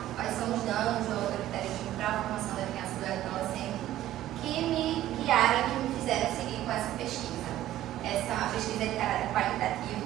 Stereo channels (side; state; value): left; quieter; 13.7 dB